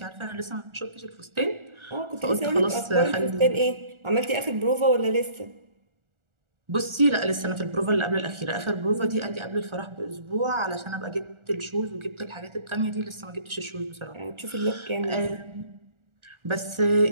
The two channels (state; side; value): late; left; 1.4 ms